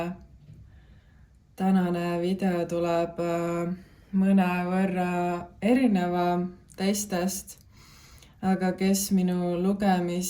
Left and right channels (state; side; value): identical; both; correlation 1.00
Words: Tänane video tuleb mõnevõrra erineva teistest, aga kes minu